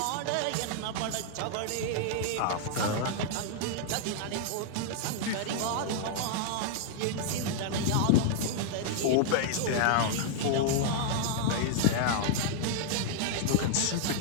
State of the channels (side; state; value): both; different; correlation -0.01